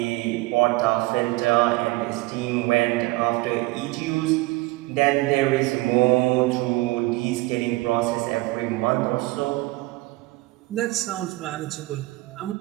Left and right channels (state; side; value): quieter; left; 21.3 dB